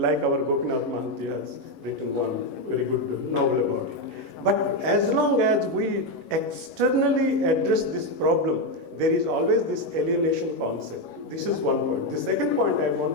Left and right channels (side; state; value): right; late; 11 ms